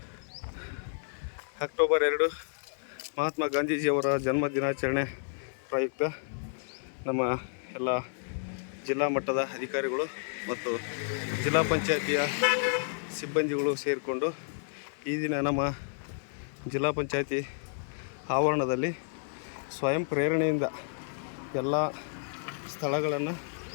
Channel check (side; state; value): right; silent; 57 dB below the other